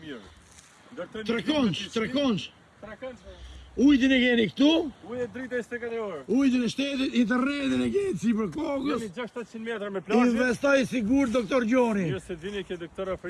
mirë. Trekonç. Trekonç. Ujtin e keni këtu, Ujë drita 24 orë. ujtin e shtetit, internetin e keni si për kokës. Jemi 600 metra me plazhe. Investoj sigur, doktor Gjoni. Mirë se vini ke doktor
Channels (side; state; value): both; identical; correlation 1.00